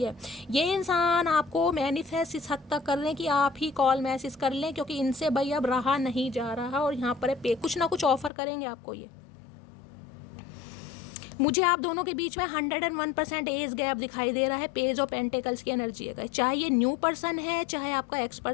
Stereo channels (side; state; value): right; drops out; at 8.3 s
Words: है, ये इंसान आपको मैनिफेस्ट इस हद तक कर रहे हैं कि आप ही कॉल मैसेज कर लें, क्योंकि इनसे भाई अब रहा नहीं जा रहा। और यहाँ पर कुछ ना कुछ ऑफर करेंगे आपको ये। मुझे आप दोनों के बीच में 101% एज गैप दिखाई दे रहा है। पेज ऑफ पेंटिकल्स की एनर्जी है, चाहे ये न्यू पर्सन है चाहे आपका एक्स